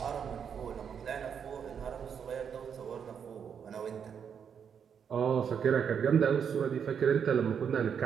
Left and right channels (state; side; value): quieter; left; 7.4 dB